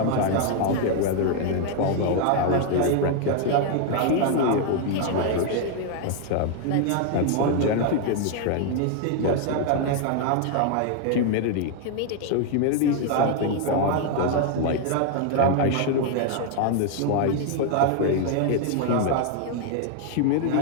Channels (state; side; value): different; both; correlation 0.00